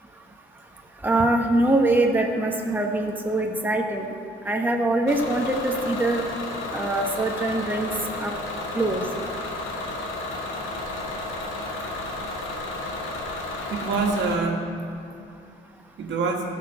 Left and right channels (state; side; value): normal; both; correlation 0.59